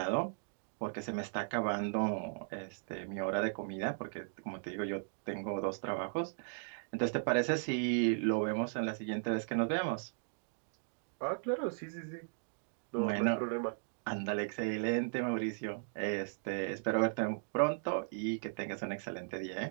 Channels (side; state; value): left; silent; digital silence